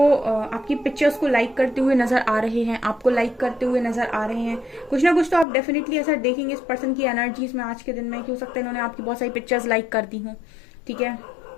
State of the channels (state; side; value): drops out; right; at 5.5 s